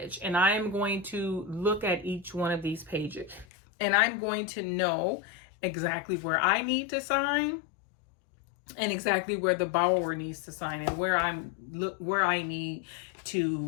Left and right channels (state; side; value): drops out; right; at 3.5 s